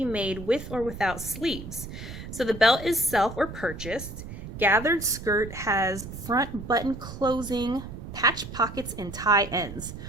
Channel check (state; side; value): noise; right; rumble, 10 dB below the sound